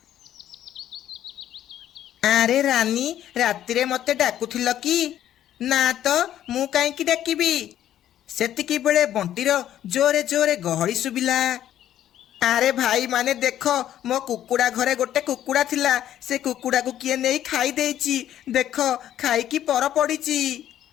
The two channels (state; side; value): quieter; right; 11.6 dB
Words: ଆରେ ରାନୀ, ରାତିରେ ମତେ ଡାକୁଥିଲ କି? ନା ତ, ମୁଁ କାହିଁକି ଡାକିବି? ସେତିକି ବେଳେ ବଣ୍ଟିର ଜୋରେ ଜୋରେ ଗହଳି ଶୁଭିଲା। ଆରେ ଭାଇ ମାନେ ଦେଖ, ମୋ କୁକୁଡ଼ା ଘରେ ଗୋଟେ କୁକୁଡ଼ା ଥିଲା, ସେ କୁକୁଡ଼ାକୁ କିଏ ନେଇ ଖାଇ ଦେଇଛି। ଦେଖ, ଖାଇକି ପର ପଡ଼ିଛି।